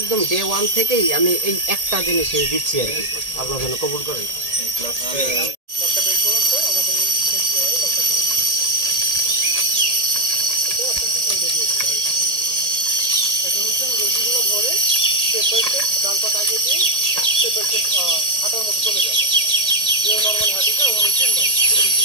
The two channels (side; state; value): left; late; 1.8 ms